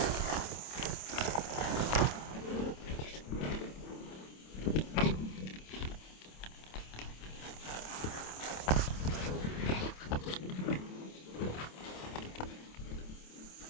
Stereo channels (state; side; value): late; right; 27 ms